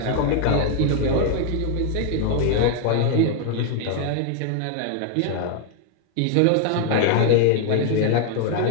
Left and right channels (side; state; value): both; different; correlation 0.00